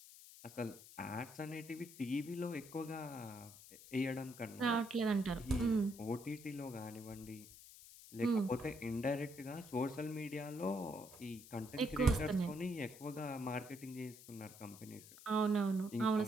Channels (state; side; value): noise; left; hiss, 17 dB below the sound